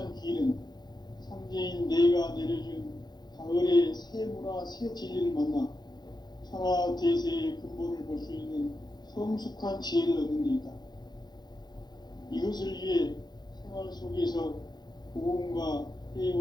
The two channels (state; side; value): late; right; 0.20 ms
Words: 길은 상제인 내가 내려준 가을의 새 문화, 새 진리를 만나 천하 대세의 근본을 볼 수 있는 성숙한 지혜를 얻는 데 있다. 이것을 위해 생활 속에서 보험과